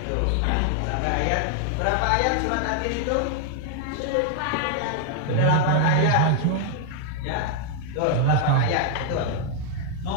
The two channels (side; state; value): both; different; correlation 0.00